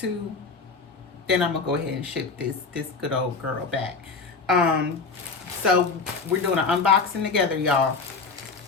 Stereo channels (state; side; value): quieter; right; 4.5 dB